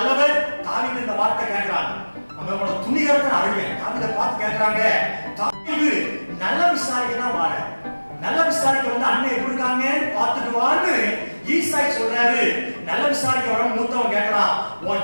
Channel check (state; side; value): inverted; both; correlation -1.00